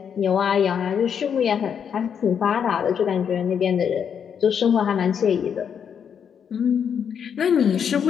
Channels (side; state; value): right; quieter; 7.6 dB